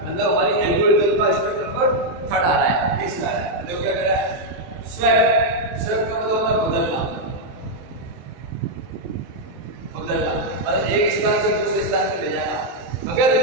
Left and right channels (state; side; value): late; left; 23 ms